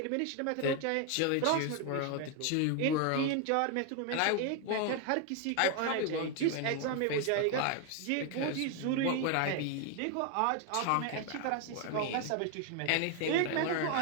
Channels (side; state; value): both; different; correlation 0.01